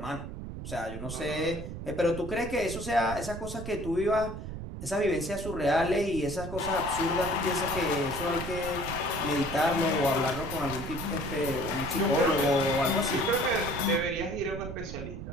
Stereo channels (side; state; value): right; noise; rumble, 8 dB below the sound